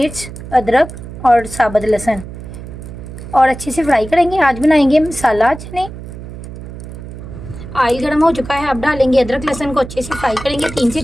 अदरक और साबुत लहसुन और अच्छे से फ्राई करेंगे। आज बनाएंगे मसाला चने। ऑयल गरम हो चुका है, अब डालेंगे अदरक लहसुन को अच्छे से फ्राई करेंगे 3 से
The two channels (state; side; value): noise; right; hum, 12 dB below the sound